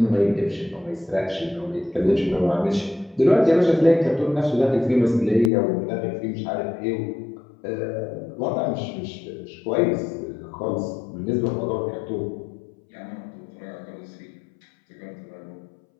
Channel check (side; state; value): right; drops out; at 5.5 s